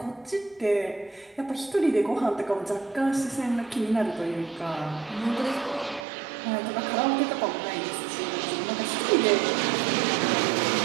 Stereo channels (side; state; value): left; drops out; at 6.1 s